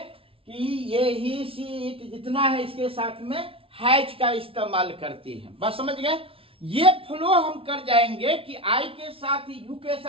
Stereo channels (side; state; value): left; late; 0.26 ms